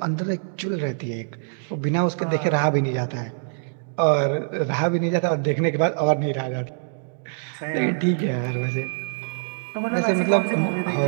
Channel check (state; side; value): silent; left; digital silence